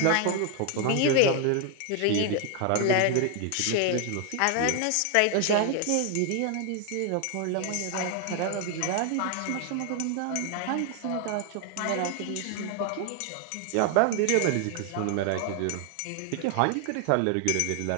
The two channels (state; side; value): different; both; correlation 0.00